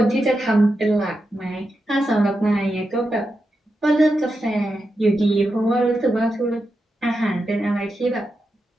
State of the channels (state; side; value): normal; both; correlation 0.88